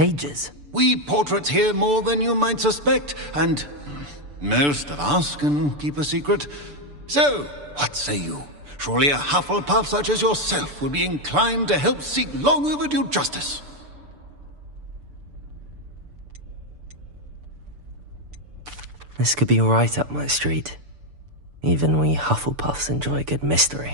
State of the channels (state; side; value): late; left; 6.9 ms